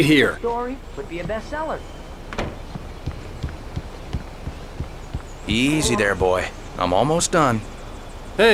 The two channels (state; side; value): identical; both; correlation 1.00